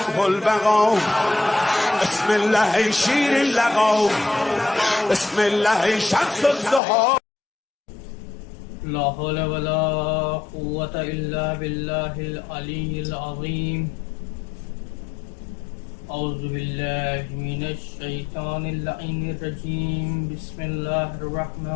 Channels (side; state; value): right; drops out; at 6.8 s